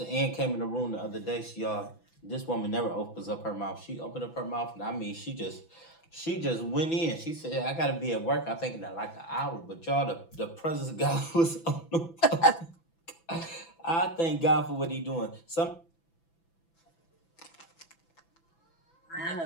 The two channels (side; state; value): right; late; 6.0 ms